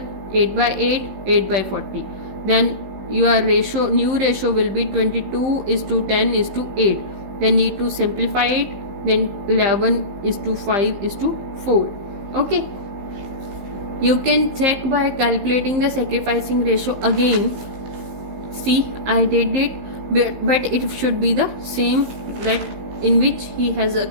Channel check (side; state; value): left; late; 16 ms